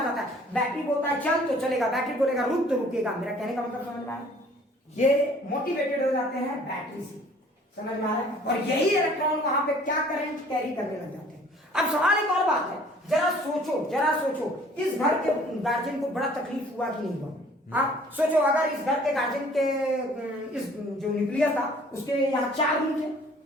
है। बैटरी बोलता है चल तो चलेगा, बैटरी बोलेगा रुक तो रुकेगा। मेरा कहने का मतलब समझ में आया? ये मोटिवेटेड हो जाते हैं बैटरी से, समझ में आ रहा है? और यही इलेक्ट्रॉन वहां पे क्या करंट कैरी करने लग जाते हैं। अब सवाल एक और बात है, जरा सोचो, इस घर के गार्जियन को बड़ा तकलीफ हुआ कि नहीं हुआ? हाँ सोचो, अगर इस घर के गार्जियन के इस जो न्यूक्लियस था उसके यहाँ 4 रूम थे,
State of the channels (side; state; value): both; normal; correlation 0.54